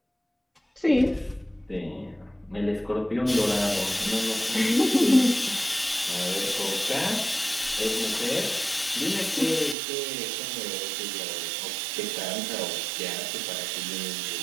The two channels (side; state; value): left; drops out; at 9.8 s